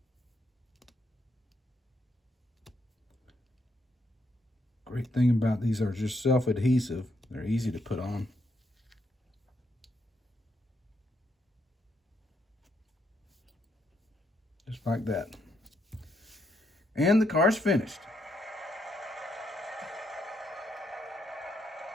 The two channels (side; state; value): both; normal; correlation 0.76